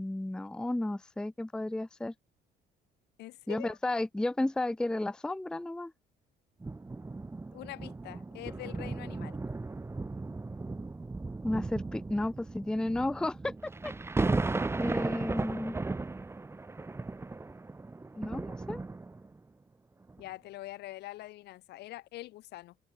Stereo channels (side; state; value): both; normal; correlation 0.92